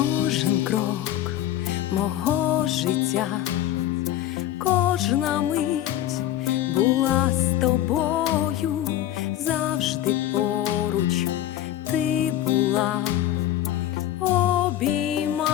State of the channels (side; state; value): right; quieter; 12.6 dB